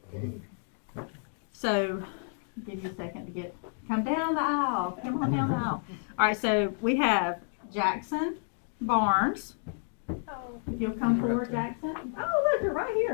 So, give you a second to come down the aisle. Come on down the aisle. All right, so we have Jackson Barnes. If you'll come forward, Jackson. Oh, look, you're right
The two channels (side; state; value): right; silent; digital silence